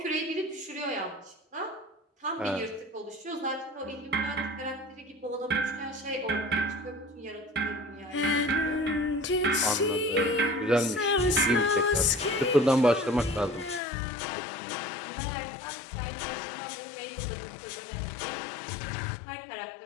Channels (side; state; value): right; drops out; at 13.8 s